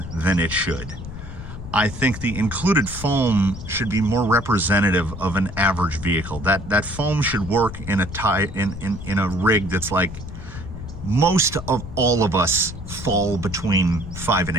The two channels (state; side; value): noise; left; rumble, 10 dB below the sound